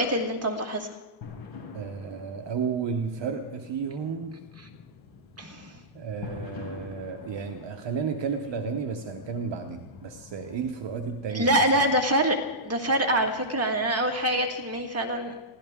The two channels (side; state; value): both; normal; correlation -0.13